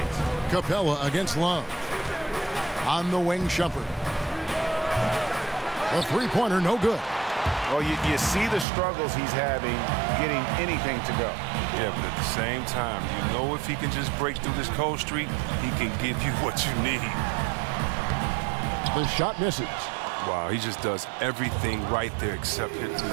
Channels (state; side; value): drops out; left; at 8.7 s